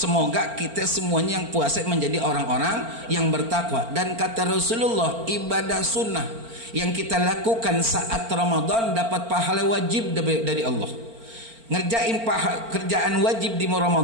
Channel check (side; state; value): left; late; 4.4 ms